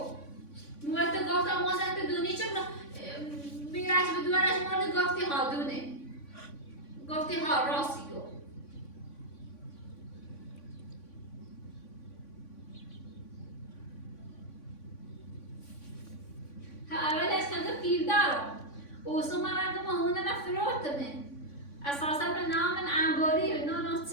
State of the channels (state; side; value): late; right; 3.5 ms